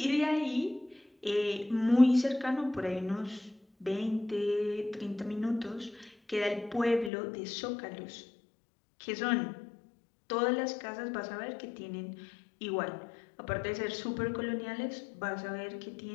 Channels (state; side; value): drops out; right; at 7.1 s